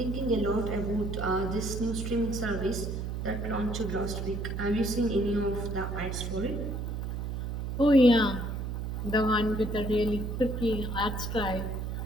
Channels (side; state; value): right; noise; hum, 4 dB below the sound